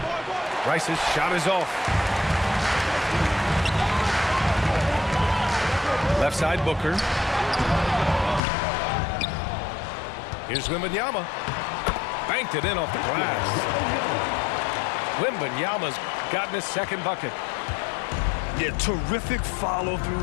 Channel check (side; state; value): right; drops out; at 8.4 s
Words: Rice's shot is off. Left side, Booker. Here's Wembanyama. Banked it in off the glass. Wembanyama's gotten his second bucket. Yeah, terrific